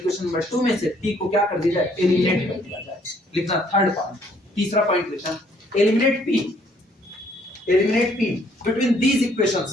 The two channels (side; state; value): both; normal; correlation 0.64